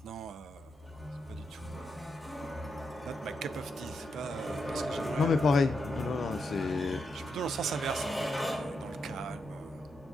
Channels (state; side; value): normal; both; correlation 0.83